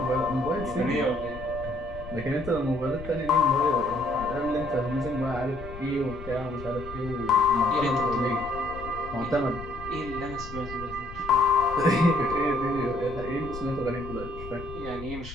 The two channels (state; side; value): noise; left; rumble, 13 dB below the sound